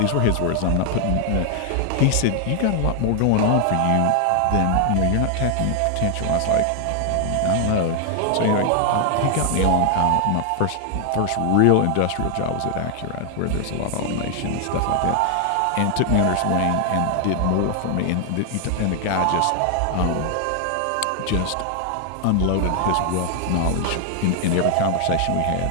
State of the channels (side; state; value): both; different; correlation 0.00